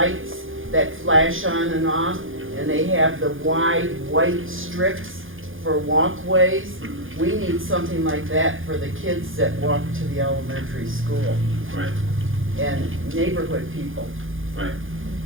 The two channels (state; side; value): late; left; 0.58 ms